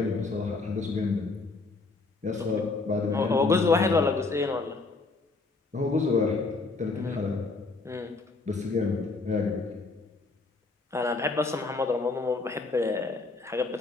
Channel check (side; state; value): right; quieter; 3.7 dB